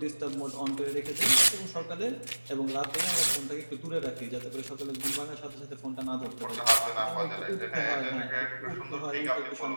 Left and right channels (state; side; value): inverted; both; correlation -1.00